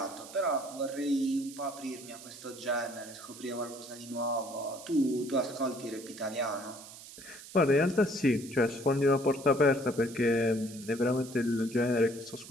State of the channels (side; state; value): right; noise; hiss, 16 dB below the sound